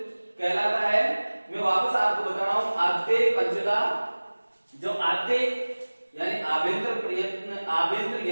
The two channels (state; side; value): inverted; both; correlation -1.00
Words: कहलाता है। मैं वापस आपको बता रहा हूं, आद्य पंचदा, जो आद्य यानी आभ्यंतर